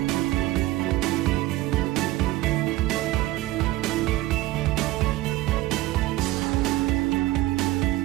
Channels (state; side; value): quieter; left; 17.3 dB